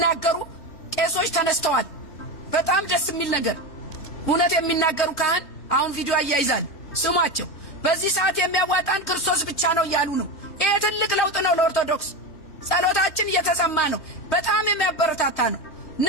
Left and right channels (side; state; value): right; late; 3.2 ms